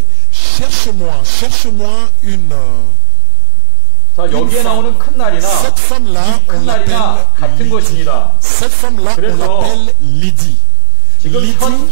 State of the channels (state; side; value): different; both; correlation -0.01